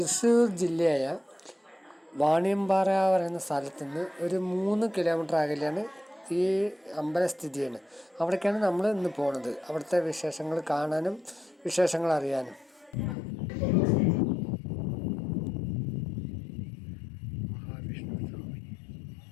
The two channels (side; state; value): right; drops out; at 13.2 s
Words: ജില്ലയായ വാണിയമ്പാറ പറയുന്ന സ്ഥലത്ത് നിന്ന് ഒരു 3 കിലോമീറ്റർ അകലെയാണ് ഈ അമ്പലം സ്ഥിതി ചെയ്യുന്നത്. അവിടേക്കാണ് നമ്മൾ ഇന്ന് പോണത്, അവിടുത്തെ വിശേഷങ്ങൾ കാണാനും വിശേഷങ്ങൾ അറിയാനും. മഹാവിഷ്ണു സ്വാമി,